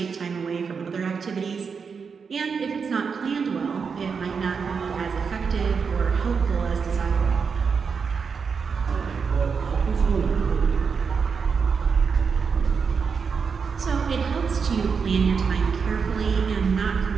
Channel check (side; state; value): left; quieter; 5.8 dB